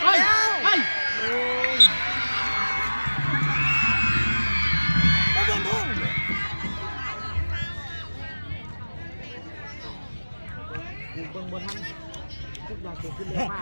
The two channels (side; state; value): both; inverted; correlation -1.00